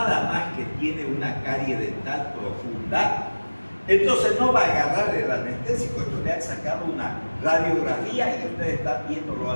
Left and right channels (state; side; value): inverted; both; correlation -1.00